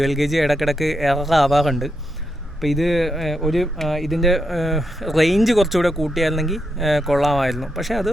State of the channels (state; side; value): normal; both; correlation 0.83